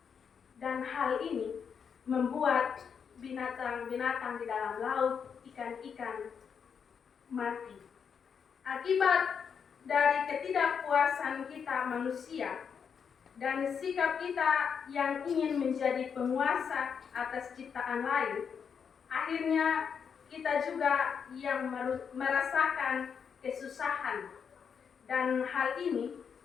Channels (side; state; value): right; quieter; 6.8 dB